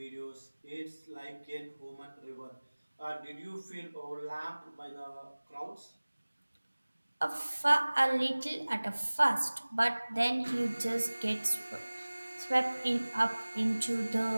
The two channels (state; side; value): inverted; both; correlation -1.00